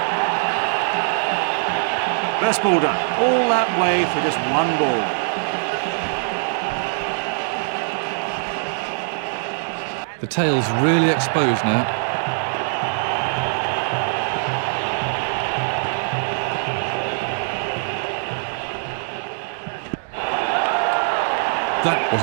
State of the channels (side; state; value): left; silent; digital silence